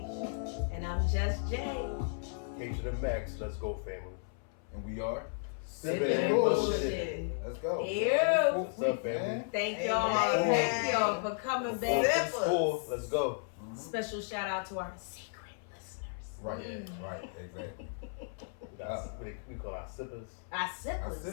And I'm Just Jay. K to the max. Let's go, family. And we are Sipping and bullshit. Let's go. Ew. What's up, family? Thank y'all. Thank y'all for coming back. Let's go. Special shout out to our secret listeners. Right, exactly. We call our sippers. Our sippers.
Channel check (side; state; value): right; silent; 55 dB below the other